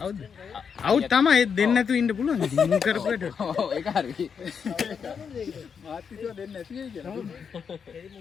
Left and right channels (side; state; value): right; quieter; 6.6 dB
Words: අවුට් තමයි දෙන්න නැතුව ඉන්න පුළුවන්. ඉතින් මුන් කරපුවට. ඔව් ඒක හරි. මාත්‍රිකව දෙන්න නැති වෙයි කියලා. ඒ